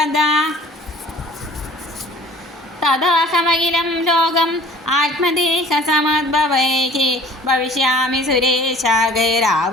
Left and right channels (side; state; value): both; normal; correlation 0.49